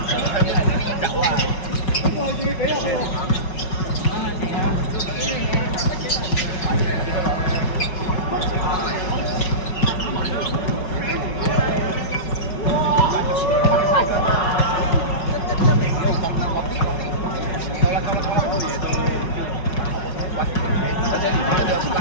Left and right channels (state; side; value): late; right; 5.4 ms